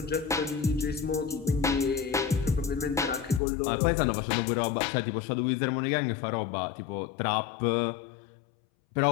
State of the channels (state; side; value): drops out; right; at 3.4 s